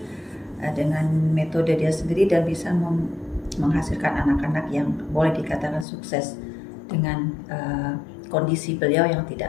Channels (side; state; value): right; drops out; at 5.9 s